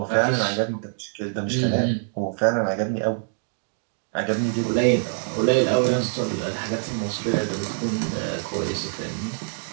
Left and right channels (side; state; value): left; silent; digital silence